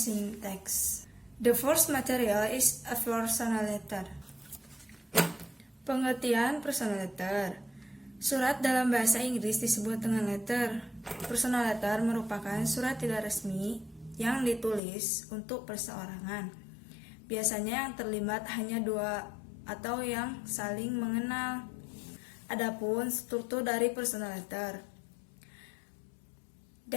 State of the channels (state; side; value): drops out; right; at 14.8 s